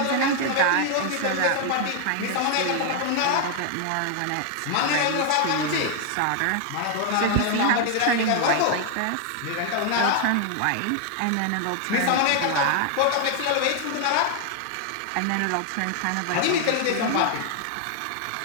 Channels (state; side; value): different; both; correlation 0.00